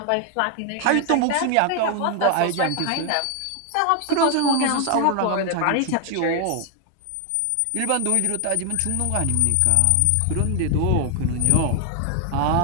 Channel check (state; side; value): different; both; correlation 0.00